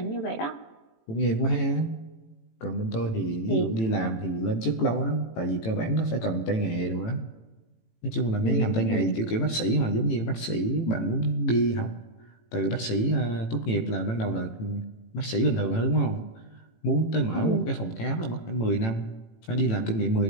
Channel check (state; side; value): late; right; 18 ms